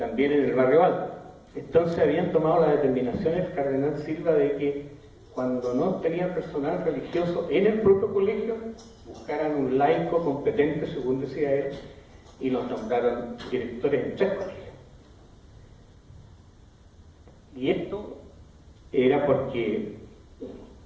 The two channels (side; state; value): both; identical; correlation 1.00